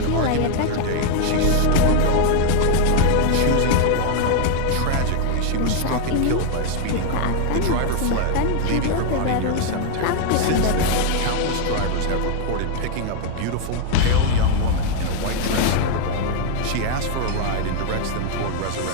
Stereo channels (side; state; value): both; different; correlation 0.00